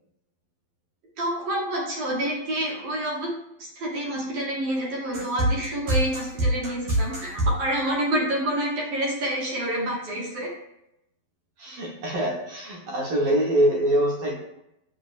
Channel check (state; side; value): late; left; 11 ms